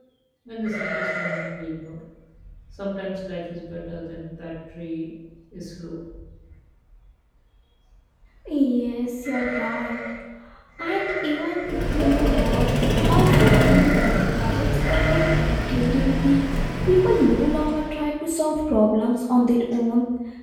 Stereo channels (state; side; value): identical; both; correlation 1.00